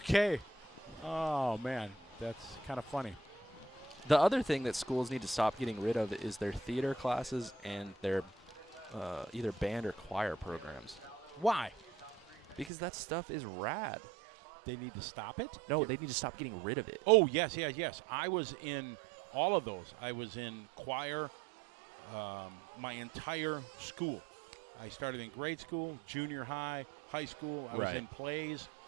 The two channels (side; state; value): left; drops out; at 12.7 s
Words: Oh, man. That's kind of funny. The other thing that schools need to stop getting rid of is their theater classes and their either band or choir programs. Why? Because that stuff is rad. They need to stop it? No, they need to stop getting rid of it. Oh, yes, yes, yes. I was in all of those. I was in choir my entire school. I started in grade school, junior high, high school. I was in plays.